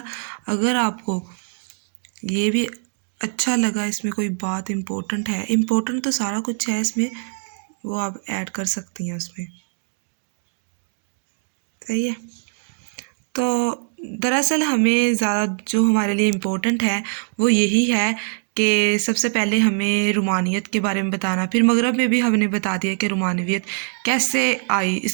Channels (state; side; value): silent; left; 56 dB below the other